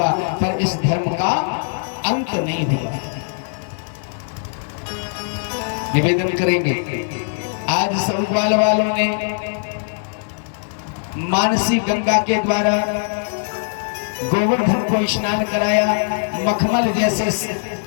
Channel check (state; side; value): silent; right; digital silence